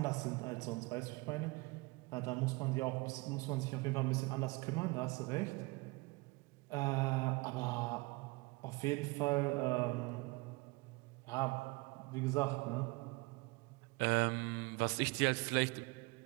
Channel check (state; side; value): quieter; left; 25.1 dB